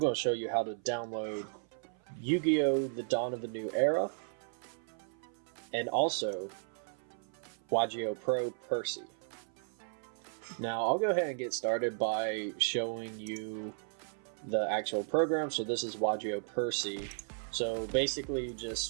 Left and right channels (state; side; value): silent; left; 54 dB below the other